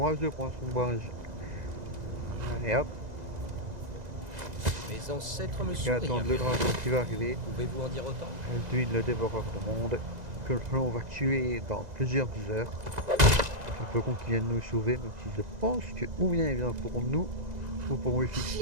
pour un sombrage. Allez hop, Mes ancêtres me et sourient. attendre le dragon qui va arriver. Pouvez-vous en dire autant? Elduin le dévoreur de monde, que l'on va tuer dans plusieurs heures. Un peu con qu'il vienne nous sauver, même si je pense que ou bien il vient pour nous, ou pour Ulfric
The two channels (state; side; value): late; left; 2.0 ms